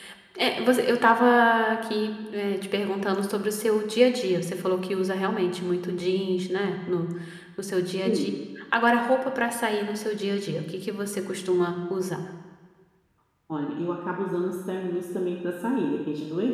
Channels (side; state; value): both; identical; correlation 1.00